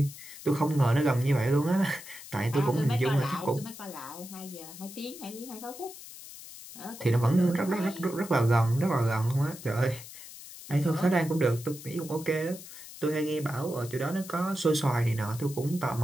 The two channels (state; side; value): noise; left; hiss, 15 dB below the sound